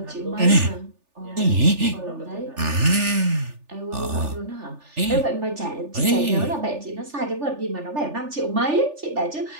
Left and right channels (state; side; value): late; left; 3.4 ms